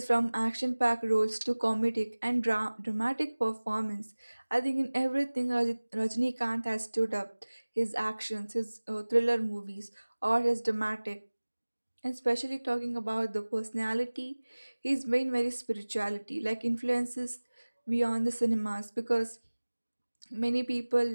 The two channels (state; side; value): inverted; both; correlation -1.00